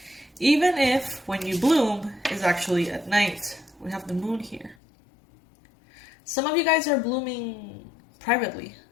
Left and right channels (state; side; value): drops out; right; at 4.8 s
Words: Even if when you bloom is actually at night. We have the moon here. Some of you guys are blooming privately.